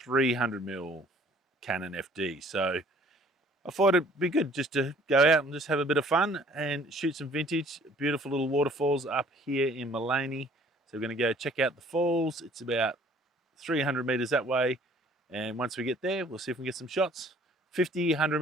300mm Canon FD. So I thought it'd be good just to go out and just have a bit of fun and shoot some vintage. Beautiful little waterfalls up here in Mullaney. So we're going to go check out the falls. It's about 300 meters that way. And once we get there, we'll see if we can get some shots. 50,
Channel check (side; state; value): both; normal; correlation 0.55